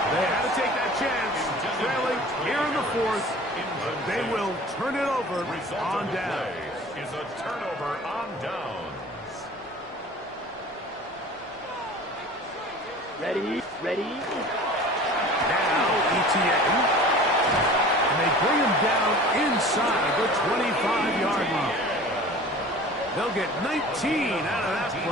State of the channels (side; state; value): both; normal; correlation 0.42